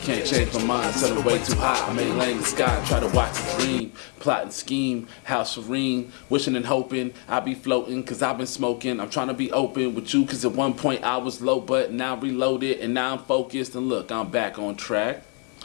can't change my mind. Set it way too high, I may lay in the sky. Try to watch a dream, plot and scheme. How serene, wishing and hoping I be floating, cause I've been smoking. I'm trying to be open with you, cause at one point I was low, but now reloaded and now I'm focused. And look, I'm back on track.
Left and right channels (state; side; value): quieter; right; 39.5 dB